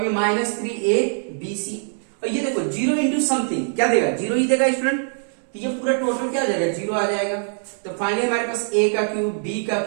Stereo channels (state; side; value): silent; left; 64 dB below the other